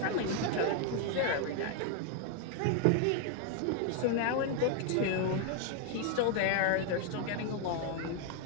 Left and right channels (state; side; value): different; both; correlation 0.00